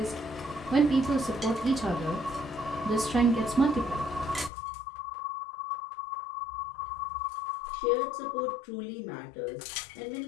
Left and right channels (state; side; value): drops out; right; at 4.5 s